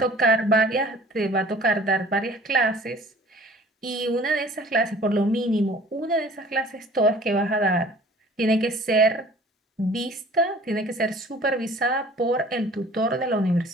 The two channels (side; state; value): both; normal; correlation 0.49